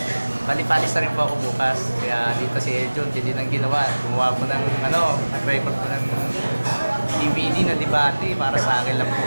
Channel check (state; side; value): inverted; both; correlation -1.00